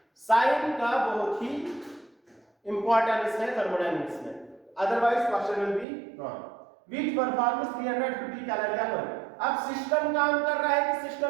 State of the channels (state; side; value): drops out; left; at 5.9 s